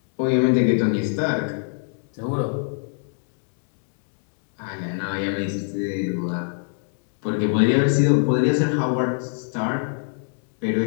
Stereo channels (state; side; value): silent; right; digital silence